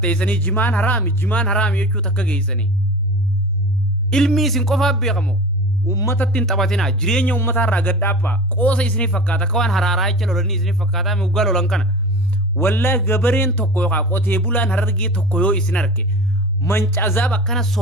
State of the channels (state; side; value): normal; both; correlation 0.34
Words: jimaan haraami jechuu takka geessanii ilmii isin qofaa beekamoo ummatatti hin taphatinaa jireenya ummataa irraa gadhaabbaa qoosa isinii fakkaata akka waan haraaraa jecha lolanii isinii fakkaataa muggaa lolan kana wallaahi gabareen tokko yookaan qotee bulaan harargee tokko yoo isin arge mancazaab akkana